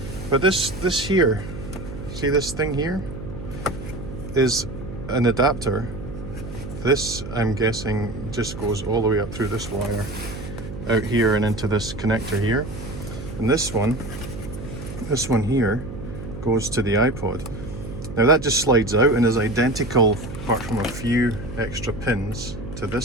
But this here, see this thing here, is an adapter. This, I'm guessing, just goes all the way up through this wire, out here and into this connector here. And this one here, goes to the iPod. Now that just slides out and is identical, apart from a few extra pins, to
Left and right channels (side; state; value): right; noise; hum, 10 dB below the sound